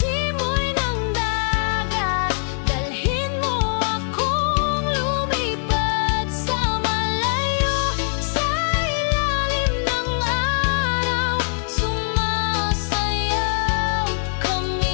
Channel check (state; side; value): silent; right; digital silence